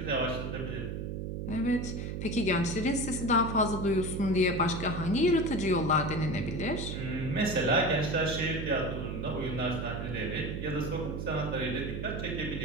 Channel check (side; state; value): right; noise; hum, 4 dB below the sound